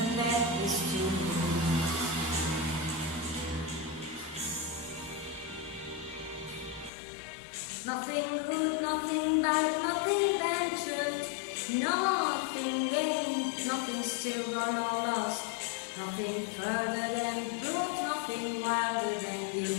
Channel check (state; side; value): drops out; right; at 6.9 s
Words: that is to lose. Nothing good, nothing bad, nothing ventured, nothing gained, nothing still gone or lost, nothing further than proof, nothing wilder than